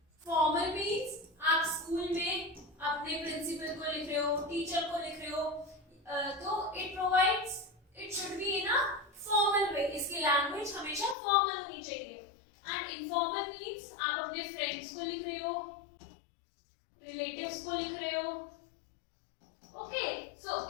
फॉर्मल मीन्स आप स्कूल में अपने प्रिंसिपल को लिख रहे हो, टीचर को लिख रहे हो, तो it should be in a formal way. इसकी लैंग्वेज हमेशा फॉर्मल होनी चाहिए। एंड इनफॉर्मल मीन्स आप अपने फ्रेंड्स को लिख रहे हो, रिलेटिव्स को लिख रहे हो। Okay, so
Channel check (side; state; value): right; drops out; at 11.2 s